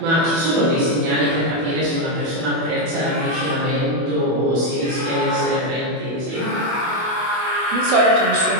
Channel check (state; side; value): late; left; 24 ms